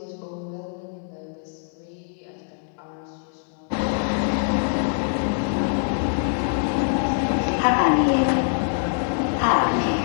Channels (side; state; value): right; silent; 63 dB below the other